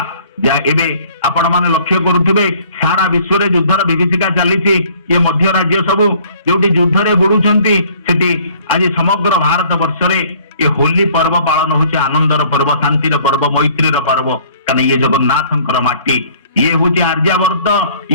एबे आपण माने लक्ष्य करुथिबे सारा विश्व रे युद्धर विभीषिका चली ये मध्य राज्य सब जोटी युद्ध रे बुडुचंती सेठी आज समग्र भारत वर्ष रे ये होली पर्व पालन होचे आनंदर पर्व शांतिर पर्व मैत्रीर पर्व। कारण ये जगन्नाथंकर माटी ये हूँ आर्यावर्त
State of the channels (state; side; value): inverted; both; correlation -0.56